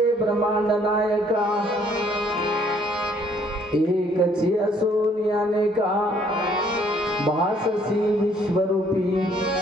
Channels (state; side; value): normal; both; correlation 0.63